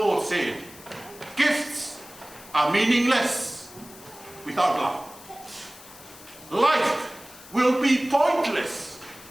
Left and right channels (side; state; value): left; noise; hiss, 19 dB below the sound